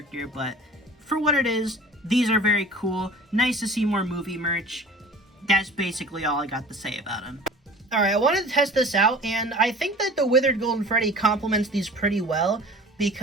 But for what it is, these are very cool. Nice to see more movie merch. That's basically all I got to say about them. Alright, I wanted to test this out, and I think that the Withered Golden Freddy complements these pretty well,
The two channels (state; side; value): normal; both; correlation 0.42